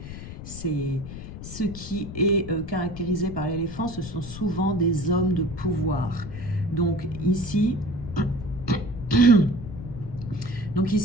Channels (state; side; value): noise; left; rumble, 11 dB below the sound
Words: ce qui est caractérisé par l'éléphant, ce sont souvent des hommes de pouvoir. Donc ici,